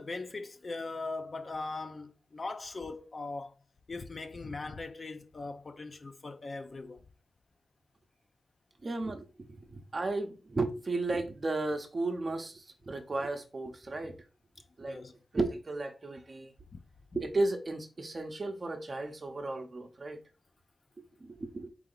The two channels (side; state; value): both; normal; correlation 0.92